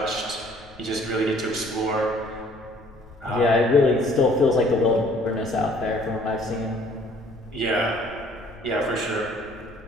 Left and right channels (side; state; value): left; noise; rumble, 23 dB below the sound